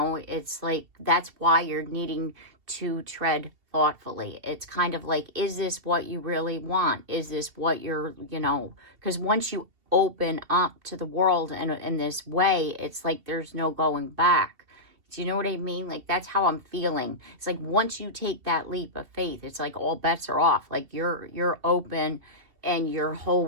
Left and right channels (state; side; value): late; left; 2.7 ms